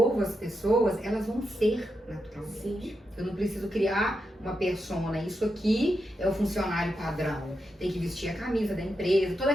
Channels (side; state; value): both; normal; correlation 0.86